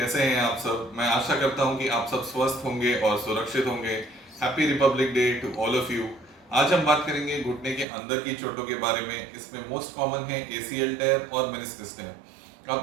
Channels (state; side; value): drops out; left; at 7.9 s